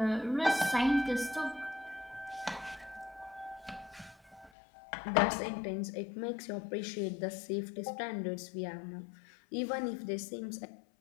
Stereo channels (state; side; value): drops out; right; at 4.5 s